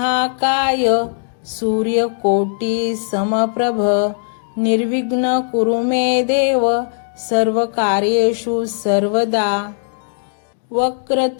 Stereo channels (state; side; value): silent; right; digital silence